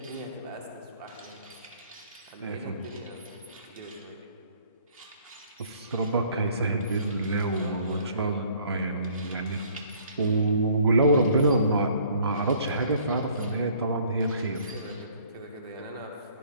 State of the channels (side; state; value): both; inverted; correlation -0.58